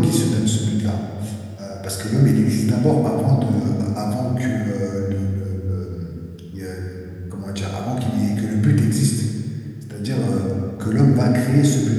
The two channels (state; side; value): identical; both; correlation 1.00